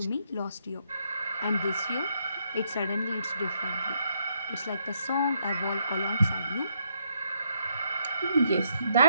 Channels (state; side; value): inverted; both; correlation -0.75